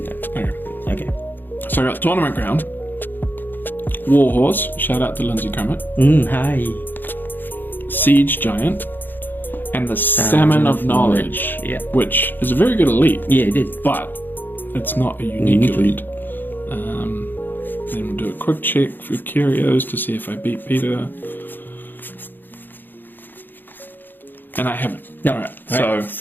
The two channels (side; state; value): right; late; 0.092 ms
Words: Okay. So I got Tournament Ground, Warhorse, shout out to Lindsay Kermit, Hi. Siege Giant, and the Salmon of Knowledge, which is a very good elite. Yeah, it is. But it's not a unique elite. Then we'll do a quick check for curios to see if I beat Peter. And I haven't. No. Alright, so